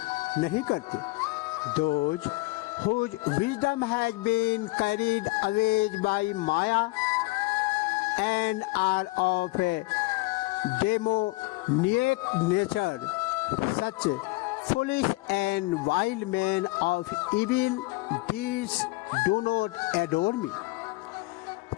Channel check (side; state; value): right; quieter; 22.8 dB